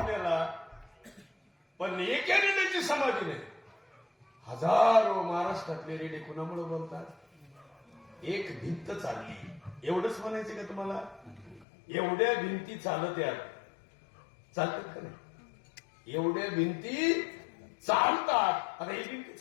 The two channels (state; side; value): drops out; right; at 11.7 s